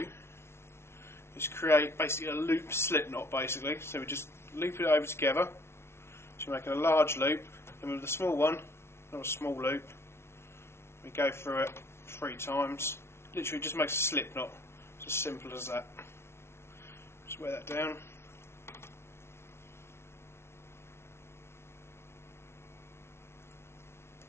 is create basically a loop slip knot basically. So we just loop it over together. So we're making a large loop, and with the small one, not a small loop, we go through it 3 times. Literally just makes a slip knot. It's as simple as that. Just wear that down.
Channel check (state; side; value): late; right; 0.12 ms